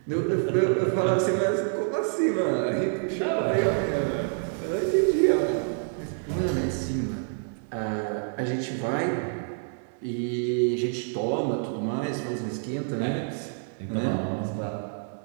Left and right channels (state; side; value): silent; left; 60 dB below the other